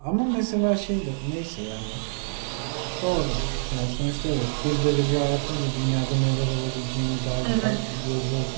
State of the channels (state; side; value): silent; left; digital silence